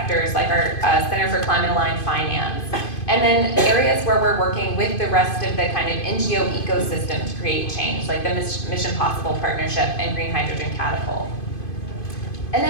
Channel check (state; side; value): late; right; 2.5 ms